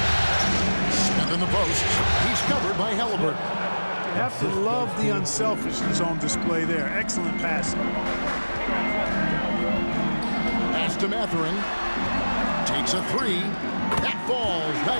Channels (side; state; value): both; inverted; correlation -1.00